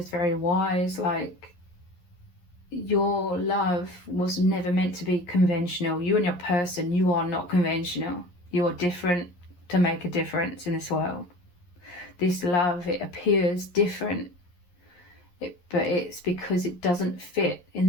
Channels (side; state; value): right; late; 11 ms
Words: very wise. Like, your love was never meant to be conventional. You and your person, you are not conventional. You are different to make a difference in this world. This love, it appears different, but it's because it doesn't fit in